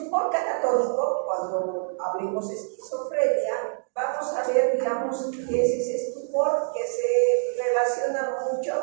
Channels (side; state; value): left; silent; digital silence